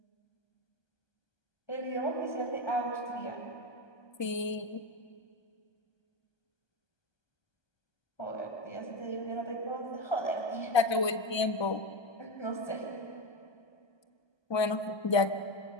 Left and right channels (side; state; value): right; late; 1.3 ms